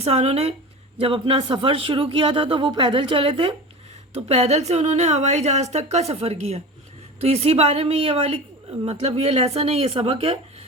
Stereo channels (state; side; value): normal; both; correlation 0.31